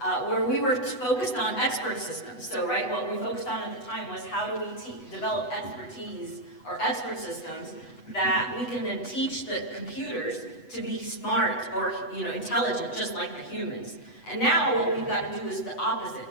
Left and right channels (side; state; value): right; late; 8.1 ms